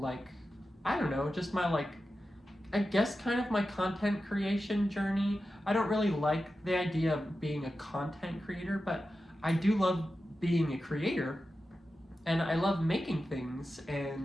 I don't know, just my like, I guess kind of my content creation journey. I don't really like the idea of being a content creator, but I do love being a creator, and I love making things.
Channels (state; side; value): normal; both; correlation 0.92